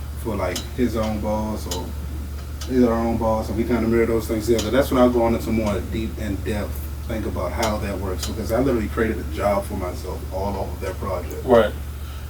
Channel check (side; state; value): both; identical; correlation 1.00